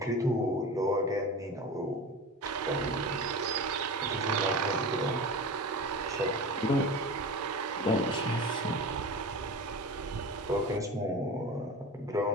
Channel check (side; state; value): both; normal; correlation 0.31